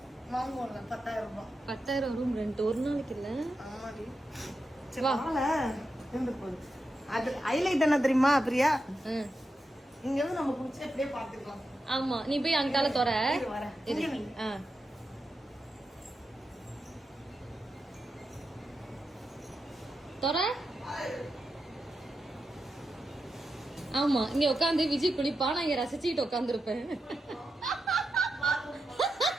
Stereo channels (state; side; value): normal; both; correlation 0.88